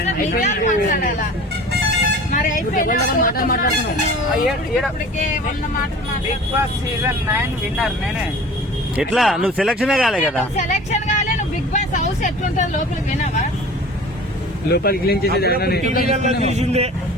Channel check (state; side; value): normal; both; correlation 0.42